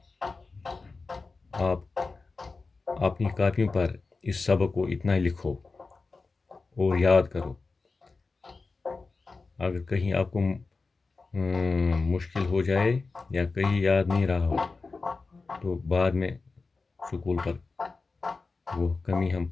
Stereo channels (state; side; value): quieter; right; 4.0 dB